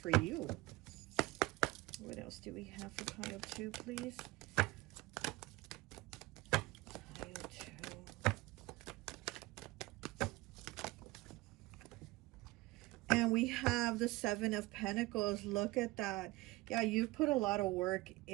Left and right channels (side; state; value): left; quieter; 20.5 dB